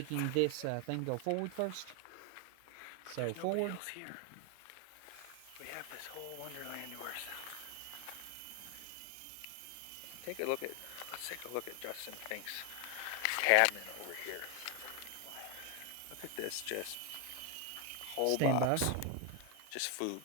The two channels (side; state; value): both; different; correlation 0.01